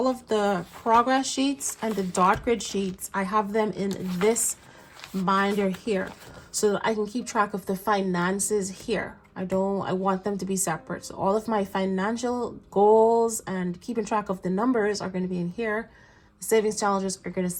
of the progress sheets and the dot grid sheets, I have them in this binder here. so that I can keep track of the finances here. I want them to be separate. So all of my financial goals and keeping track of the numbers are going to be in here. The savings challenges are going to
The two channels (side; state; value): both; identical; correlation 1.00